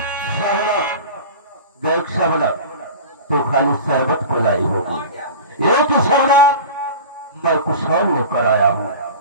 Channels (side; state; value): both; inverted; correlation -0.34